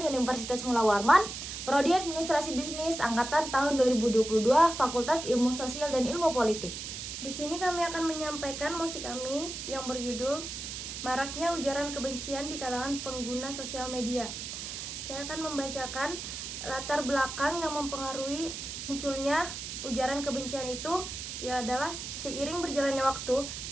Universitas Mula Warman, Prodi Administrasi Bisnis Angkatan tahun 2022, Fakultas Ilmu Sosial dan Ilmu Politik. Di sini kami akan menyampaikan musik kami yang berjudul Maraknya Ujaran Kebencian di Kalangan Pengguna Sosial Media. Saya akan membacakan latar belakang yang mempengaruhi munculnya ujaran kebencian itu, adalah seiring berjalannya waktu,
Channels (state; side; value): noise; right; hiss, 7 dB below the sound